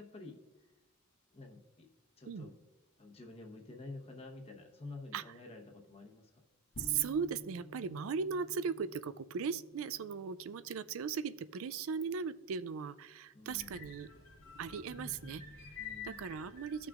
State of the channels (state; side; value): quieter; left; 5.0 dB